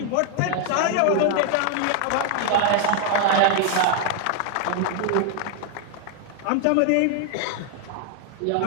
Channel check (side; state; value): both; different; correlation 0.00